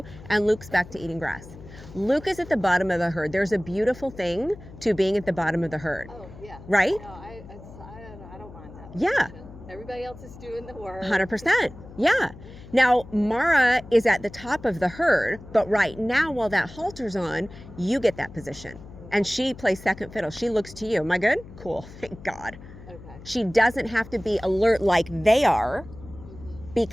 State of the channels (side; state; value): left; noise; hum, 17 dB below the sound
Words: and Luke's back to eating grass. Luke is at the bottom of the herd. There's a beautiful thing to being at the bottom of the herd. Oh, yeah. Right? No, I don't mind that. Yeah. Everybody else is doing the work. 100%. Yeah. Now, Mara is at the top of the herd, but right now, while that halter's on, you get that position. And she plays second fiddle. She looks to you. Am I good? Cool. Thank God. Okay. She doesn't have to be alert like they are